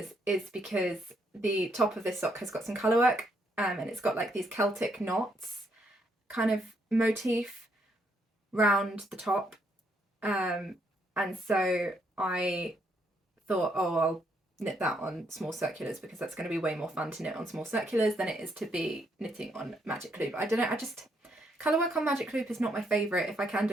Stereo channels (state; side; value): normal; both; correlation 0.74